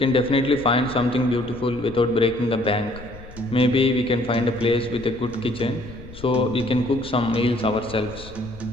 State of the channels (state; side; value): noise; left; rumble, 17 dB below the sound